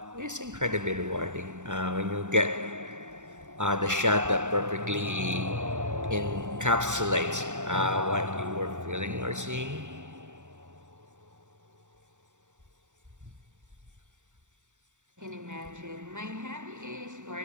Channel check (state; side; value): late; left; 0.85 ms